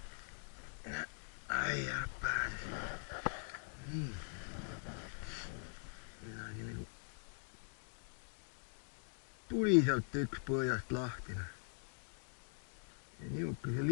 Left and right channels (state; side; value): silent; right; digital silence